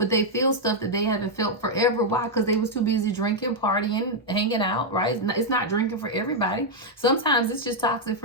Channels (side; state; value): both; normal; correlation -0.01